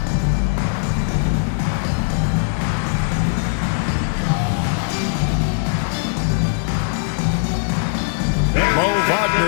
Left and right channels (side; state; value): right; silent; digital silence